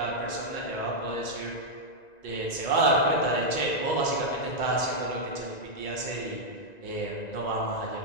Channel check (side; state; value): right; late; 1.9 ms